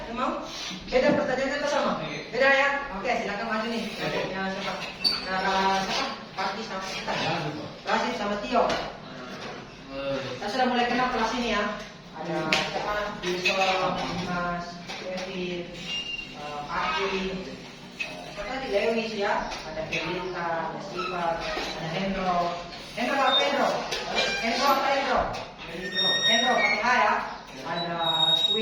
yang mau? Beda pertanyaannya atau sama? Beda ya? Oke, silakan maju nih. Kelompoknya siapa? Siapa? Parti sama kita. Rasid sama Tio. Saya sudah mulai kenal kelas ini ya. Ada siapa? Wilson, Dimas, Kevin, Aki, tadi Lewis ya. Ada Felita, ada Siva, ada Hendro. Hendro apa Hendro? Hendro apa Hendro? Hendro pakai H ya. Ada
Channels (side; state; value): both; identical; correlation 1.00